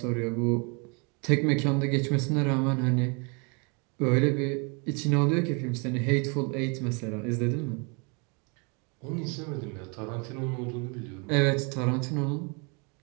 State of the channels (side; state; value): left; quieter; 33.5 dB